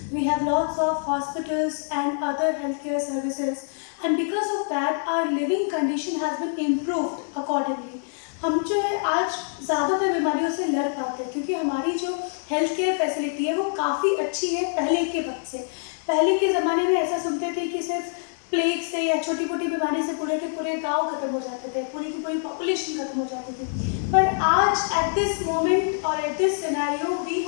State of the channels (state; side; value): silent; right; digital silence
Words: we have lots of hospitals and other healthcare services, and because of that our living condition has been improved accordingly. हम जो है आज ज़्यादातर बीमारियों से लड़ पाते हैं क्योंकि हमारी जो हेल्थ केयर फैसिलिटी है वो काफ़ी अच्छी है पहले के वक्त से। पहले के ज़माने में ऐसा सुनते थे कि सिर्फ प्लेग से या छोटी मोटी बीमारी से पूरे के पूरे गांव खत्म हो जाते थे, पूरी की पूरी पॉपुलेशन खत्म हो जाती थी। पर आज एट दिस मोमेंट और at this scenario we